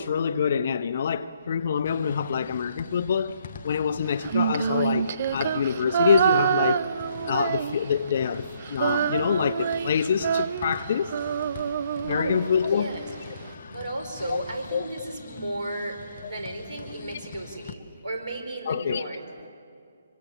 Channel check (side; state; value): both; inverted; correlation -0.69